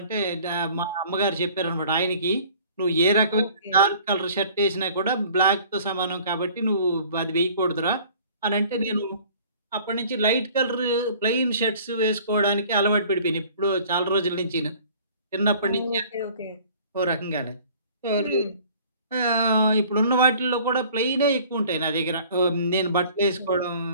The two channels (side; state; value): both; inverted; correlation -0.51